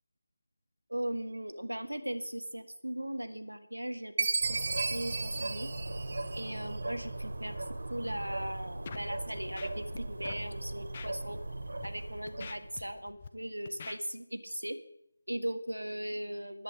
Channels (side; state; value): both; inverted; correlation -0.98